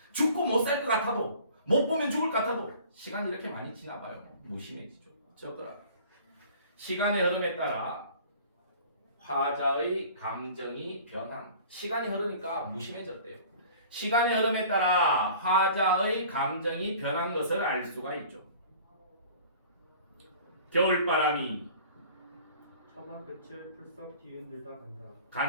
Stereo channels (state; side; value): inverted; both; correlation -0.47